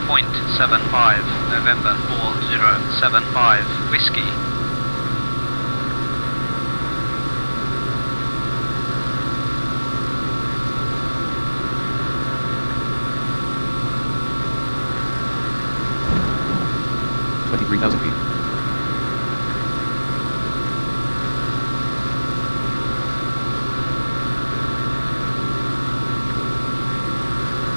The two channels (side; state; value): both; inverted; correlation -1.00